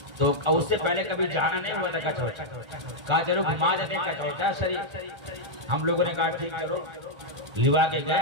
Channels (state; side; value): late; left; 1.4 ms